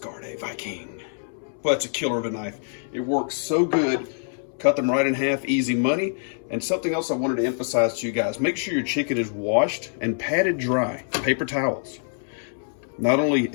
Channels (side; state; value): right; silent; 62 dB below the other